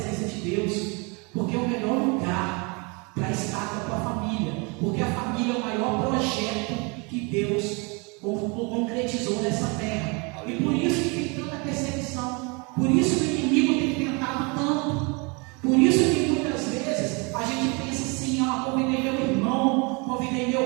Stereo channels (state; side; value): quieter; left; 30.5 dB